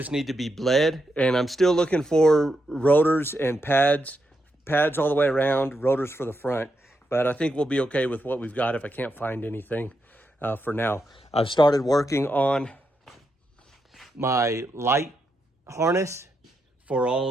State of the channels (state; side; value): normal; both; correlation 0.83